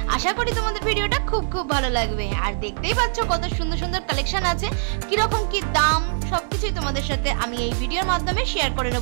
আশা করি তোমাদের ভিডিওটা খুব ভালো লাগবে। আর দেখতেই পাচ্ছ কত সুন্দর সুন্দর কালেকশন আছে, কিরকম কি দাম সবকিছুই তোমাদের সাথে আমি এই ভিডিওর মাধ্যমে শেয়ার করে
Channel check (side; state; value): left; silent; 60 dB below the other